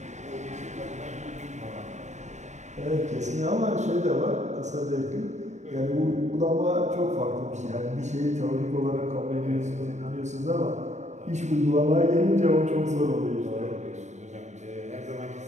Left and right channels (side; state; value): left; late; 0.34 ms